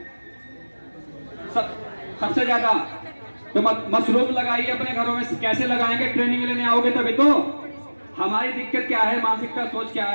सबसे ज्यादा। तो मशरूम लगाइए अपने घरों में। कैसे लगाएंगे? ट्रेनिंग लेने आओगे तभी तो। हमारी दिक्कत क्या है, मानसिकता, सोच क्या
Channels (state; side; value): inverted; both; correlation -1.00